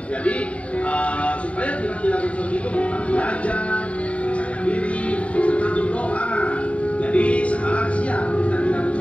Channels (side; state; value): right; late; 0.064 ms